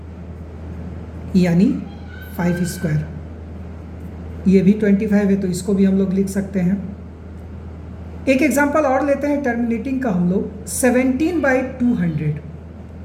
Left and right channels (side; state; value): both; identical; correlation 1.00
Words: यानी 5²। ये भी 25 है तो इसको भी हम लोग लिख सकते हैं। एक एग्जांपल और लेते हैं टर्मिनेटिंग का हम लोग 17/200